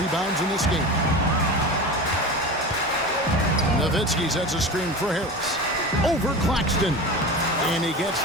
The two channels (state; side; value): normal; both; correlation 0.29